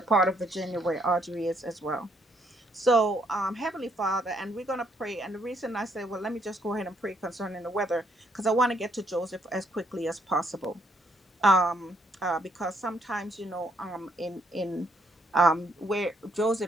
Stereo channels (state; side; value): normal; both; correlation 0.71